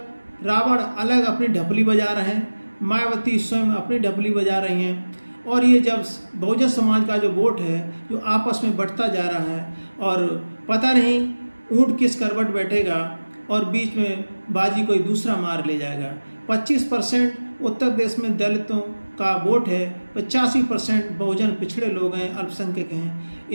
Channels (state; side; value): inverted; both; correlation -1.00